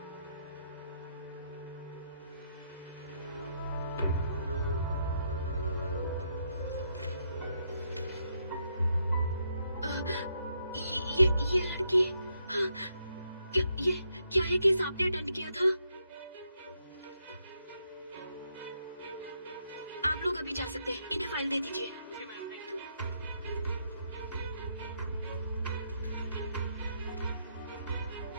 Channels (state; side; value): inverted; both; correlation -0.77